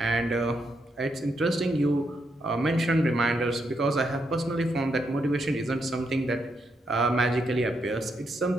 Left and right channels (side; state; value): both; normal; correlation 0.80